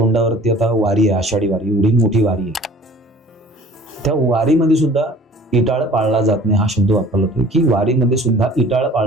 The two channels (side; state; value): both; normal; correlation 0.49